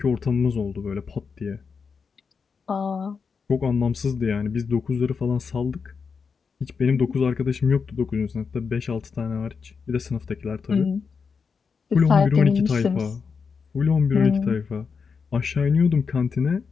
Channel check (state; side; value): quieter; right; 5.6 dB